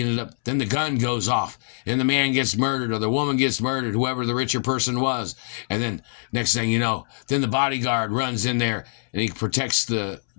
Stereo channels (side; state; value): right; silent; 63 dB below the other